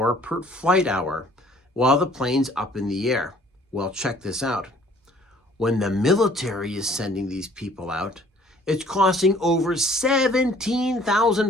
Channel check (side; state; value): both; normal; correlation 0.56